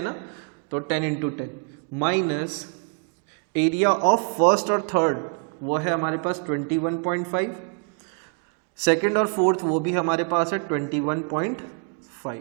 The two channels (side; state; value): left; quieter; 37.2 dB